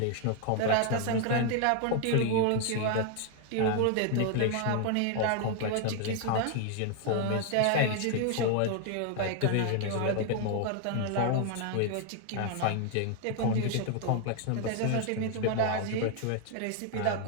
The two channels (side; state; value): both; different; correlation 0.00